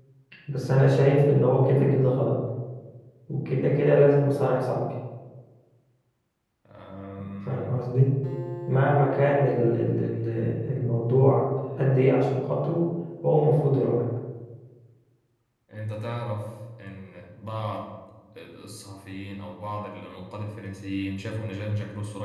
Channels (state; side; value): identical; both; correlation 1.00